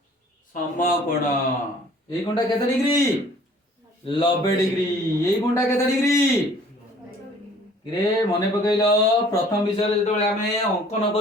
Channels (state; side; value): normal; both; correlation 0.54